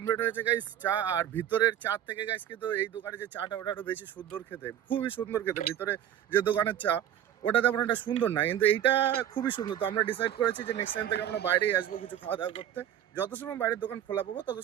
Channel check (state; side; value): quieter; left; 10.7 dB